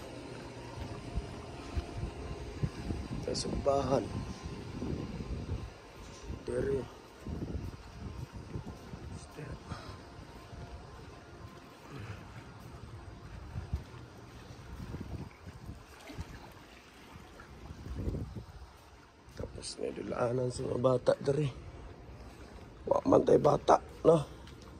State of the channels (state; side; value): identical; both; correlation 1.00